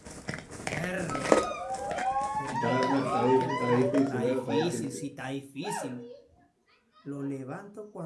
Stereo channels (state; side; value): identical; both; correlation 1.00